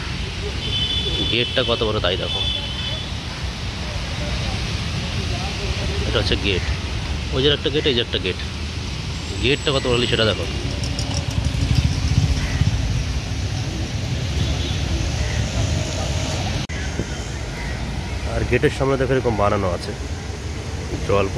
গেটটা কত বড় তাই দেখো। এটা হচ্ছে গেট, ওই যে একটা গেট, এই যে একটা গেট। গেটটা কত বড় সেটা দেখো। আর গেটের সামনে দেখো এরকম বানানো আছে, জল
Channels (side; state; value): both; identical; correlation 1.00